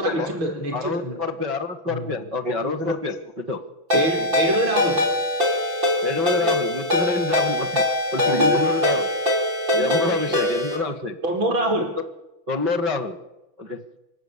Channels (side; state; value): left; late; 6.0 ms